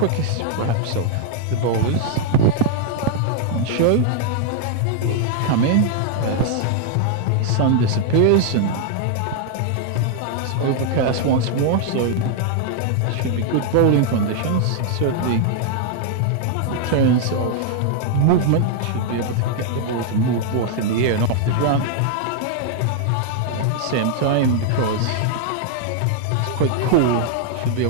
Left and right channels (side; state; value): both; different; correlation 0.00